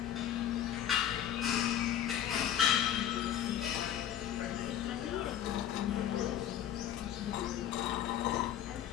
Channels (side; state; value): right; quieter; 10.5 dB